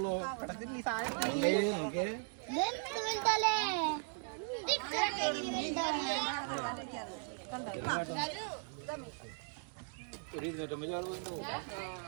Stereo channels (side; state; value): left; silent; 53 dB below the other